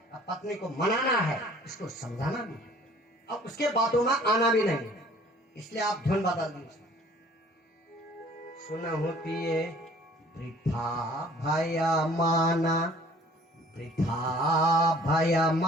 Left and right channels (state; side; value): normal; both; correlation 0.53